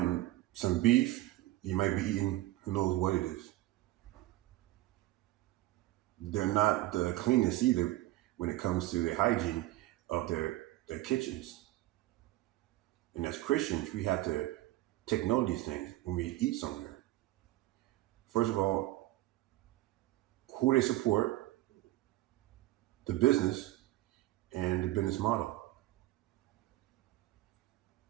some beef, you might be eating who knows what it is. They're not the cleanest either when it comes to the hygiene of their kitchens. And as Christians, we have to take note of these things when we eat somewhere. First of all, who they support, the business, and the business model.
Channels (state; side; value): quieter; left; 16.8 dB